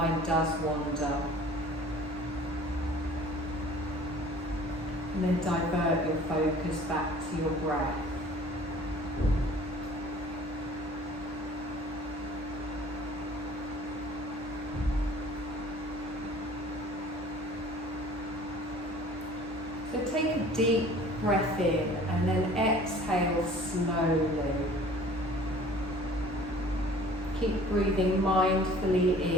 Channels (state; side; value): normal; both; correlation 0.49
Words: does wander. And then divert your focus back to your breath. So take a deep breath in and then exhale slowly. Keep breathing mindfully